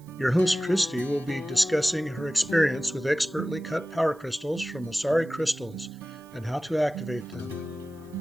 Your host, Christy, will be discussing her experience with expertly cut power crystals from Asari Crystals and how to activate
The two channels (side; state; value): right; noise; hiss, 29 dB below the sound